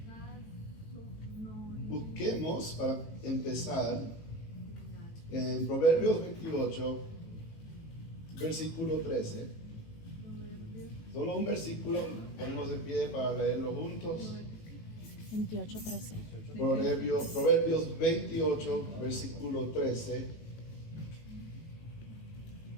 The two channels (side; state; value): right; late; 18 ms